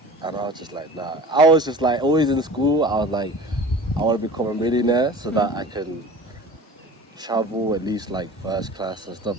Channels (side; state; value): both; normal; correlation 0.40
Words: And I was just like, nah. I was just like, always in school, I was like, I want to become a millionaire so that I can travel at least like first class and stuff.